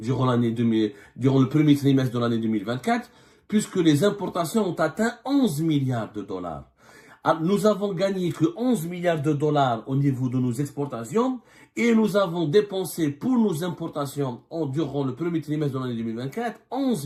premier trimestre de l'année 2024, puisque les importations ont atteint 11 milliards de dollars. Nous avons gagné que 11 milliards de dollars au niveau de nos exportations et nous avons dépensé pour nos importations durant le premier trimestre de l'année 2024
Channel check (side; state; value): both; identical; correlation 1.00